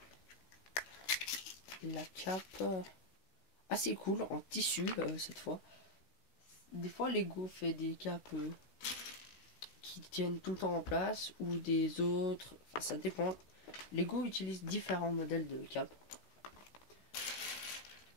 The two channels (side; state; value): right; late; 16 ms